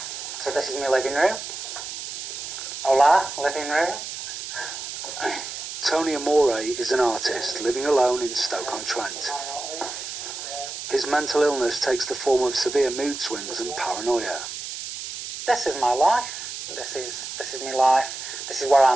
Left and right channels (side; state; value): right; noise; hiss, 8 dB below the sound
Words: So this is my living room. Hola, living room. Tony Amore is an artist living alone in Stoke-on-Trent. His mental illness takes the form of severe mood swings and paranoia. This is my life. This is my life. This is where